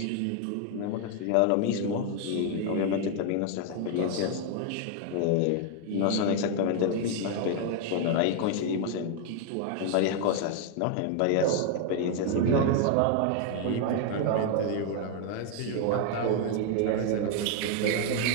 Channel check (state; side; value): different; both; correlation 0.00